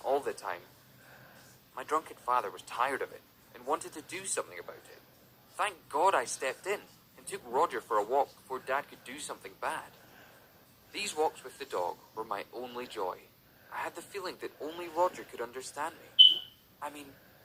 all the time. My drunken father was tired of it and wanted to do something about it. Thank God I stepped in and took Roger for a walk before Dad could do something bad. These walks with the dog were my only joy. I had the feeling that only Roger could understand me. I mean,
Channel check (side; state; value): both; identical; correlation 1.00